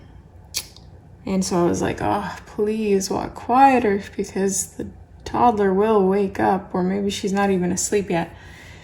so I was like, oh, please walk quieter because the toddler will wake up, or maybe she's not even asleep yet.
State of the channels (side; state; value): both; identical; correlation 1.00